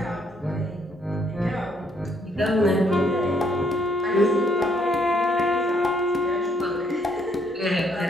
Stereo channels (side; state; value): both; normal; correlation 0.69